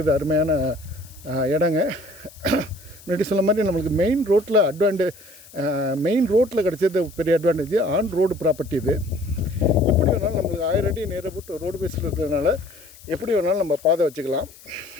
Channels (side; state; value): left; noise; hiss, 22 dB below the sound